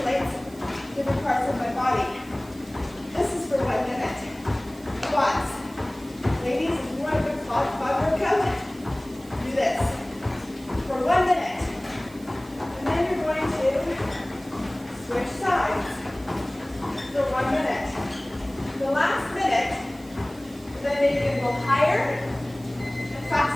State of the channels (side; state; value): right; noise; hiss, 23 dB below the sound